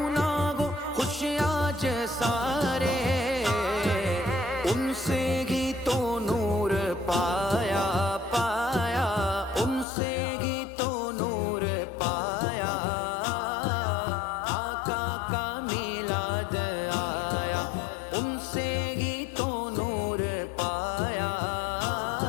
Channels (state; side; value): drops out; right; at 9.9 s